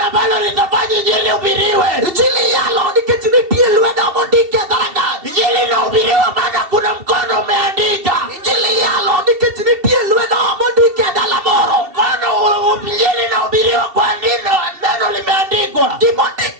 ambalo litafanya injili uhubiriwe. Injili yalo nikech nitie lwedo mondike dhorangach. Injili inahubiriwa maana kuna mkono umeandika. Injili yalo nikech nitie lwedo mondike dala moro. Mkono injili inahubiriwa kwa neno limeandikwa.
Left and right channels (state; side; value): late; left; 2.7 ms